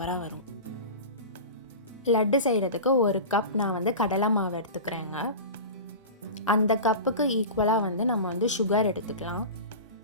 வரும். லட்டு செய்கிறதுக்கு ஒரு கப் நான் வந்து கடலை மாவு எடுத்துக்கிறேங்க. அந்த கப்புக்கு ஈக்குவலாக வந்து நம்ம வந்து சுகர் எடுத்துக்கலாம்.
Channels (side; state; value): both; inverted; correlation -0.30